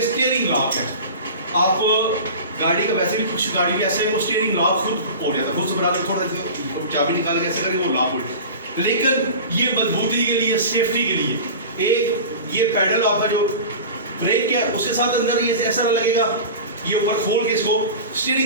स्टीयरिंग लॉक है। आप गाड़ी का वैसे भी कुछ गाड़ी भी ऐसे है वो स्टीयरिंग लॉक खुद हो जाता है, खुद से बना के थोड़ा चाबी निकाल के ऐसे करके वो लॉक हो जाए, लेकिन ये मजबूती के लिए, सेफ्टी के लिए एक ये पैडल आपका जो ब्रेक है उसके साथ अंदर ये ऐसा लगेगा ये ऊपर खोल के इसको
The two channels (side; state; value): both; inverted; correlation -0.34